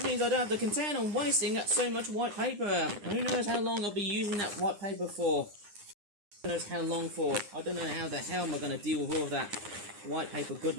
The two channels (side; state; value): left; late; 9.8 ms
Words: means I don't have to contend on wasting so much white paper. Who knows how long I'll be using that white paper for? Who knows how long for? I don't know how the hell am I going to deal with all of that white paper